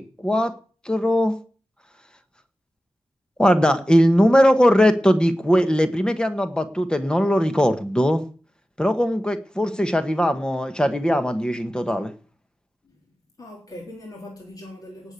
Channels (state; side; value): normal; both; correlation 0.94